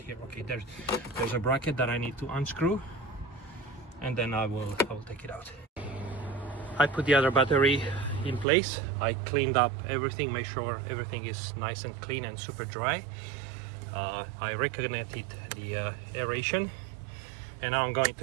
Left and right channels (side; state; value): left; drops out; at 8.5 s